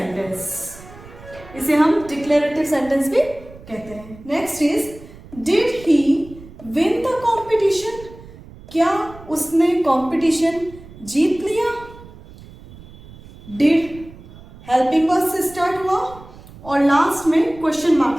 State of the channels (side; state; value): right; noise; rumble, 19 dB below the sound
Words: इसे हम डिक्लेरेटिव सेंटेंस भी कहते हैं। Next is did he win the competition. क्या उसने कंपटीशन जीत लिया। डिड हेल्पिंग वर्ब से स्टार्ट हुआ और लास्ट में क्वेश्चन